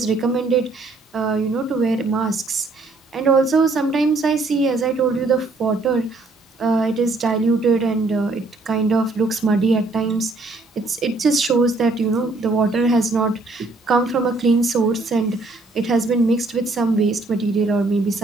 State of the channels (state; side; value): quieter; left; 3.3 dB